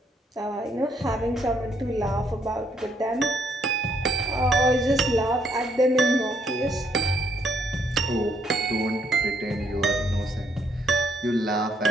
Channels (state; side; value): normal; both; correlation 0.71